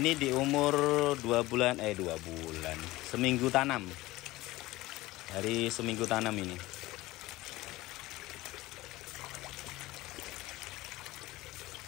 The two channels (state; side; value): quieter; right; 18.7 dB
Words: di umur 2 bulan, seminggu tanam. Dari seminggu tanam ini.